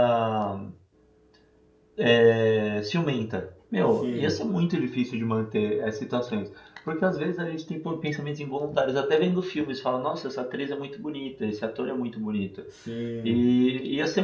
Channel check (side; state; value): both; identical; correlation 1.00